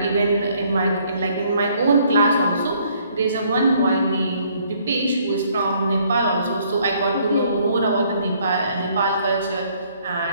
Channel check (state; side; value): inverted; both; correlation -0.64